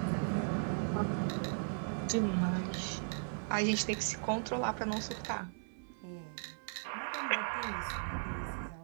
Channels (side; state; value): left; silent; 53 dB below the other